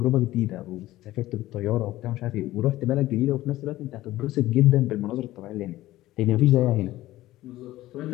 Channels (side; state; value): right; quieter; 16.1 dB